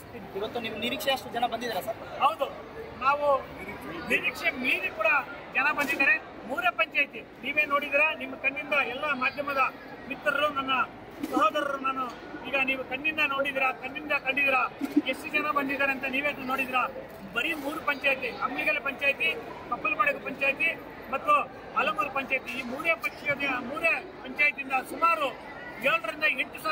ಇವತ್ತು ನಿಮ್ಮ ನಿರೀಕ್ಷೆ ಅಷ್ಟು ಜನ ಬಂದಿದ್ದಾರೆ ಸರ್? ಹೌದು, ನಾವು ನಿರೀಕ್ಷೆ ಮೀರಿ ಕೂಡ ಜನ ಬಂದಿದ್ದಾರೆ. 3 ಪಂಚಾಯಿತಿ ನೀವೇ ನೋಡಿದಿರಾ, ನಿಮ್ಮ ಕಣ್ಣಿಂದ ಎಲ್ಲ ಮಾಧ್ಯಮದ ಮಿತ್ರರು, ನನ್ನ ಸಹೋದರರು, ನಾನು ಈಗ ನೀವು ಕಣ್ಣಿಂದ ನೋಡಿದಿರಾ, ಕಂಡಿದ್ದೀರಾ ಎಷ್ಟು ಜನ ಬಂದಿದ್ದಾರೆ ಅಂತ ನೀವೇ ನೋಡಿದಿರಾ. ಬರೀ 3 ಪಂಚಾಯಿತಿ, ಅಮ್ಮಿಗಲ ಪಂಚಾಯಿತಿ, ಕಪ್ಪಲಮಡಗು ಪಂಚಾಯಿತಿ ಮತ್ತು ಅಲಮೂರು ಪಂಚಾಯಿತಿ, ಈ 3 ಪಂಚಾಯಿತಿಯಿಂದ ಸುಮಾರು 7 ರಿಂದ 8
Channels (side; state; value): both; identical; correlation 1.00